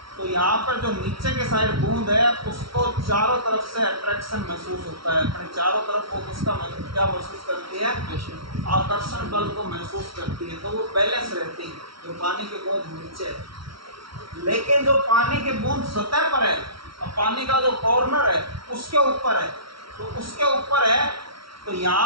तो यहाँ पर जो नीचे के साइड बूंद है उसको चारों तरफ से अट्रैक्शन महसूस होता है, अपने चारों तरफ वो उसका क्या महसूस करती है, आकर्षण बल को महसूस करती है, तो वो बैलेंस रहती है जो पानी की बूंद नीचे है। लेकिन जो पानी की बूंद सतह पर है और पानी का जो कॉर्नर है उसके ऊपर है, तो उसके ऊपर है, तो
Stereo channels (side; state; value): left; late; 0.75 ms